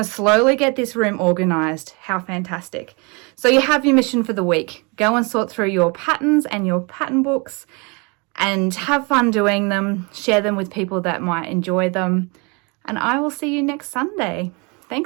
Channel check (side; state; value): left; quieter; 30.5 dB